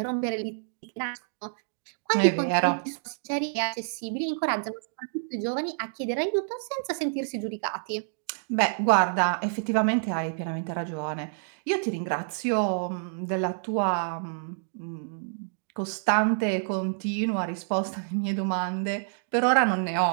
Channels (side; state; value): left; silent; digital silence